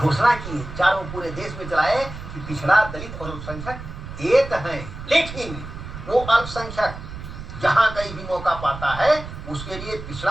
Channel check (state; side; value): noise; right; rumble, 11 dB below the sound